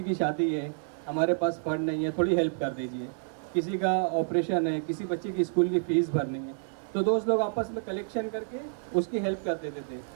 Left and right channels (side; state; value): left; silent; 58 dB below the other